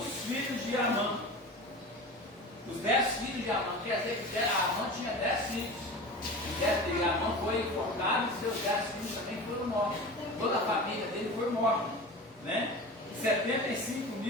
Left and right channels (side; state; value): both; normal; correlation 0.33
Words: filhos de Amã. Os 10 filhos de Amã, quer dizer que Amã tinha 10 filhos. E Amã foi enforcado e seus 10 filhos também foram mortos. Toda a família dele foi morta, né? 75